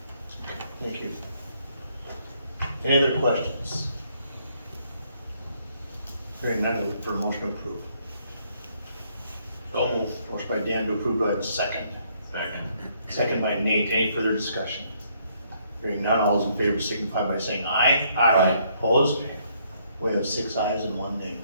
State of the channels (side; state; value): both; inverted; correlation -0.69